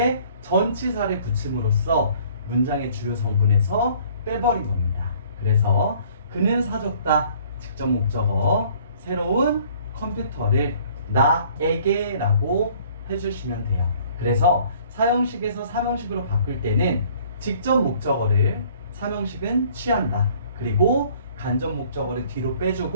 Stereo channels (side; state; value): both; inverted; correlation -0.56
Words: 전치사를 붙임으로써 문장의 주요 성분에서 빼버린 겁니다. 그래서 그는 사줬다. 직접 목적어 새로운 컴퓨터를 나에게 라고 해주시면 돼요. 그래서 사형식에서 삼형식으로 바꿀 때는 직접 목적어를 삼형식은 취한다. 그리고 간접 목적어를 뒤로